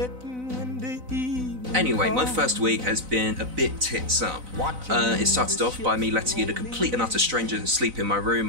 when the evening Anyway, my comes. first week has been a bit tits up. It started off by me letting in a complete and utter stranger sleep in my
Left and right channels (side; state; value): left; late; 4.0 ms